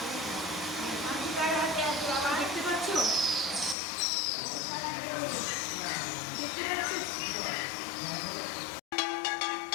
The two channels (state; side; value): drops out; right; at 3.8 s